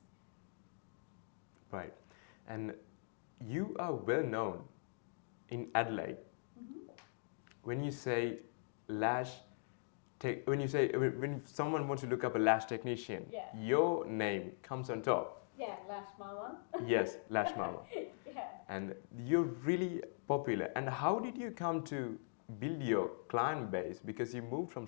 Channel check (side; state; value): right; silent; digital silence